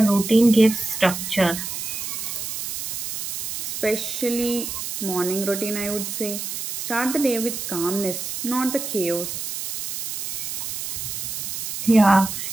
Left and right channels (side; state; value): right; noise; hiss, 5 dB below the sound